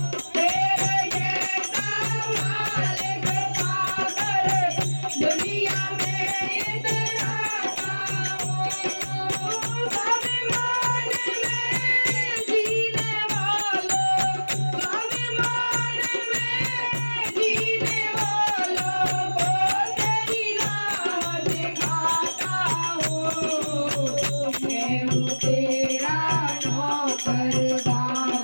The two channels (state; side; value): inverted; both; correlation -1.00